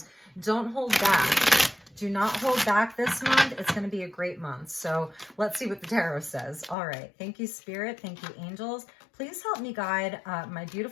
Don't hold back. Do not hold back this month. It's going to be a great month. So let's see what the tarot says. All right. Thank you, Spirit. Thank you, angels. Please help me guide my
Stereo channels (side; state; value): right; drops out; at 6.8 s